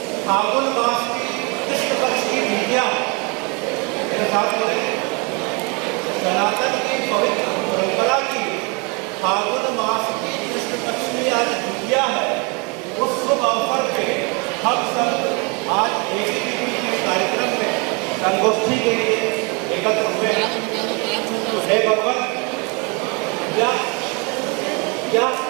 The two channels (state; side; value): quieter; left; 31.4 dB